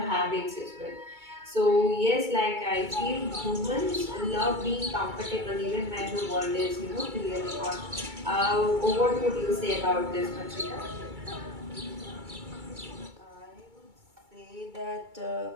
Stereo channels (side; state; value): left; late; 2.3 ms